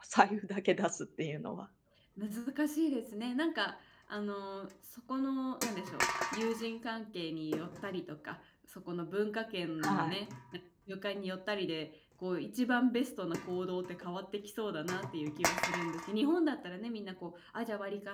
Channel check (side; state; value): both; identical; correlation 1.00